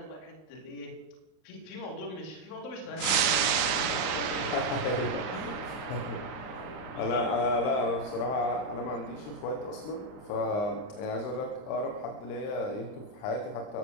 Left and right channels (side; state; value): right; late; 38 ms